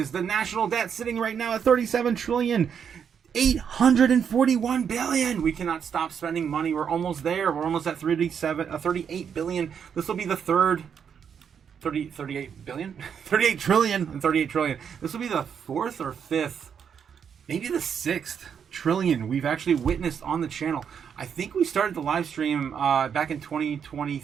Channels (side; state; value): left; quieter; 7.5 dB